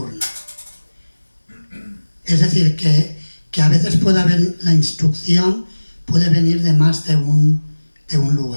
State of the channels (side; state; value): both; inverted; correlation -1.00